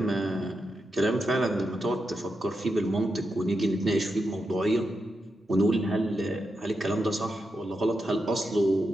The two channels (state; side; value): normal; both; correlation 0.86